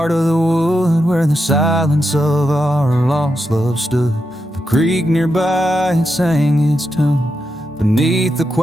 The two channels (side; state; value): both; normal; correlation 0.86